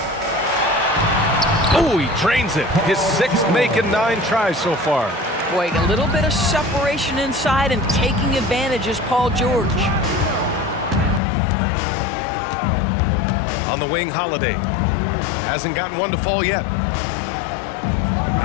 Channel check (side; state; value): right; drops out; at 11.2 s